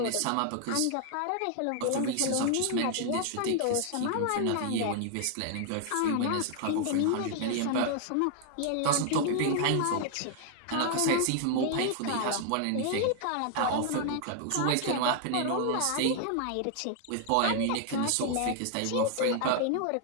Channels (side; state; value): both; different; correlation 0.00